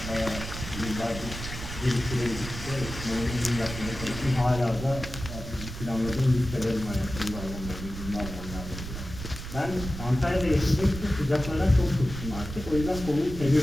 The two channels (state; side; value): noise; right; rumble, 9 dB below the sound